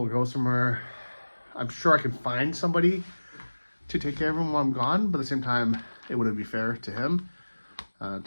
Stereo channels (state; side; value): inverted; both; correlation -1.00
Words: go somewhere, I'm sure I can find somebody to take care of him while I'm gone, but at the same time, it wouldn't be fair to him to